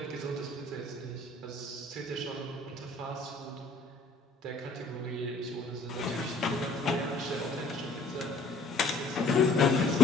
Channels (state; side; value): quieter; right; 3.2 dB